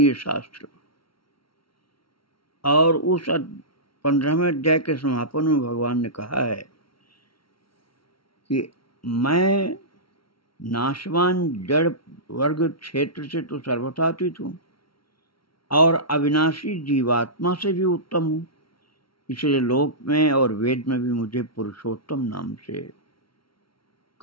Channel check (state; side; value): late; right; 0.74 ms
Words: शास्त्र। और उस 15वें अध्याय के समापन में भगवान ने कहा है कि मैं नाशवान जड़ वर्ग क्षेत्र से तो सर्वथातीत हूँ और अविनाशी जीवात्मा से भी उत्तम हूँ, इसलिए लोक में और वेद में भी मुझे पुरुषोत्तम नाम से